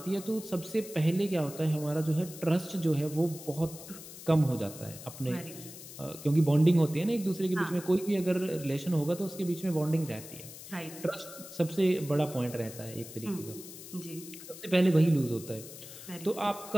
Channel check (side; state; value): left; noise; hiss, 14 dB below the sound